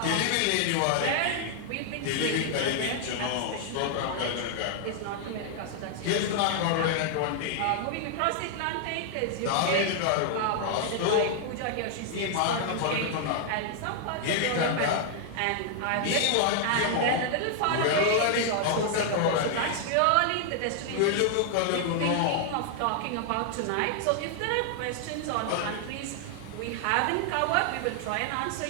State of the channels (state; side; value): different; both; correlation 0.00